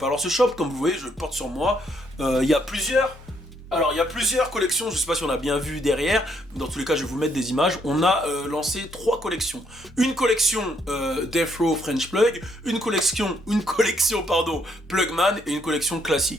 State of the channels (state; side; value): normal; both; correlation 0.71